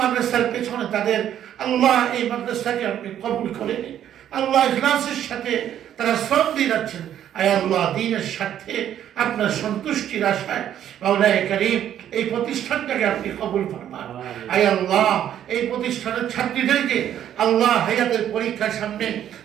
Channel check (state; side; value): quieter; left; 10.6 dB